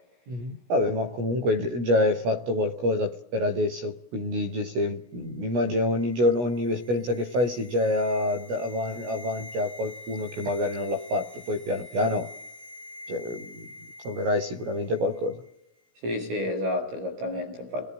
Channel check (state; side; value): late; left; 17 ms